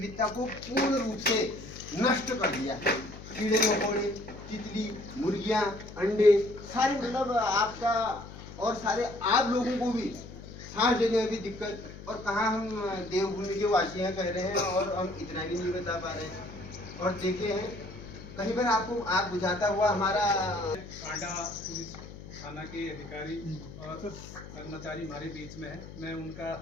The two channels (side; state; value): left; noise; hum, 14 dB below the sound